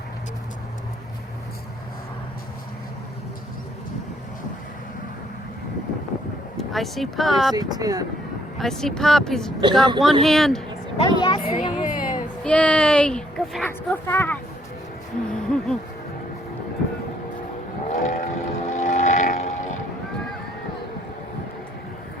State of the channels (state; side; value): normal; both; correlation 0.67